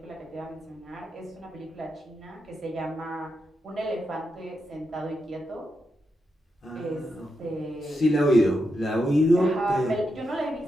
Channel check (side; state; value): both; normal; correlation 0.85